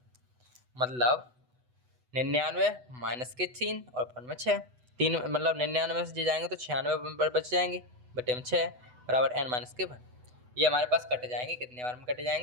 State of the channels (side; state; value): left; late; 8.0 ms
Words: मतलब 99 माइनस के 3 और अपॉन में 6, 3 मतलब 99 से जाएंगे तो 96 बच जाएंगे, बटे में 6 बराबर N-1। ये हमारे पास कट जाएंगे, कितने बार में कट